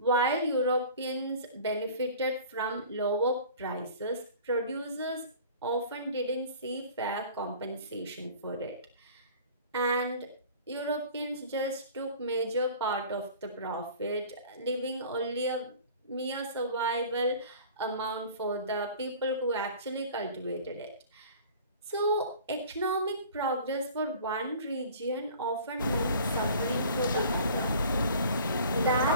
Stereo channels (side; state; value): both; inverted; correlation -0.45